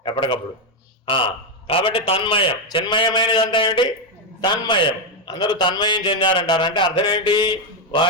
ఎప్పటికప్పుడు. కాబట్టి తన్మయం. చిన్మయమైనది అంతా ఏంటి? తన్మయం. అందరూ తన్మయం చెందారంటారు. అంటే అర్థం ఏంటి?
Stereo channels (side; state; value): both; normal; correlation 0.05